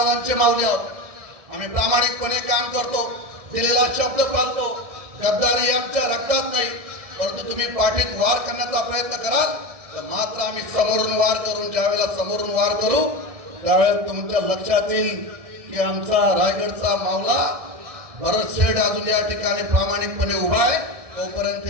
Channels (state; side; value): late; left; 1.6 ms